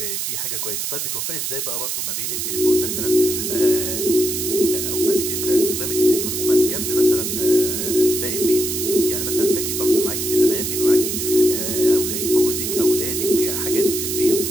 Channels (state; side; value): noise; right; hiss, 2 dB below the sound